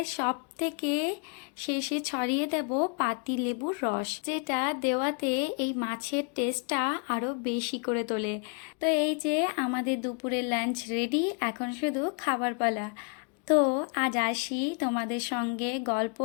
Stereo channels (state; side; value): quieter; right; 37.4 dB